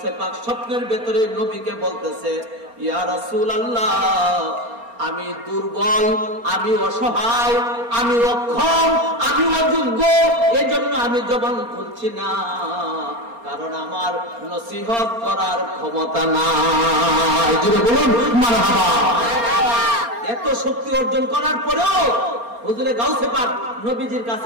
পাক স্বপ্নের ভেতরে নবীকে বলতেছে, ইয়া রাসূলুল্লাহ, আমি দুর্বল, আমি অসহায়, আমি অক্ষম, আমি অযোগ্য, এজন্য আমি জবান খুলছি না, কারণ আমার নসিহত করার ক্ষমতা নাই। যদি বলুন মারহাবা। এত শক্তি অর্জন করার পরেও হুজুরে গাউসে পাক নবীজির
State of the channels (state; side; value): late; left; 4.3 ms